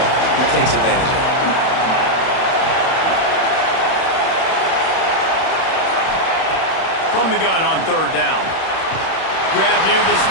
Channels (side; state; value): right; late; 31 ms